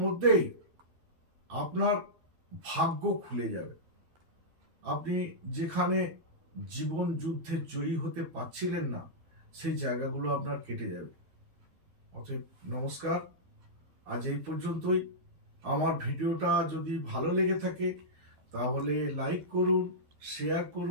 মধ্যেই আপনার ভাগ্য খুলে যাবে। আপনি যেখানে জীবন যুদ্ধে জয়ী হতে পারছিলেন না সেই জায়গাগুলো আপনার কেটে যাবে। অতএব নমস্কার, আজ এই পর্যন্তই। আমার ভিডিওটা যদি ভালো লেগে থাকে তাহলে লাইক করুন, শেয়ার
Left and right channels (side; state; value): left; late; 12 ms